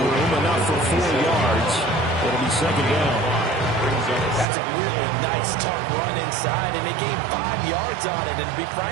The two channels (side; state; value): left; drops out; at 4.5 s